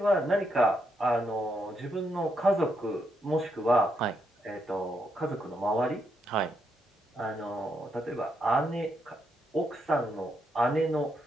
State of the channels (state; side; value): normal; both; correlation 0.79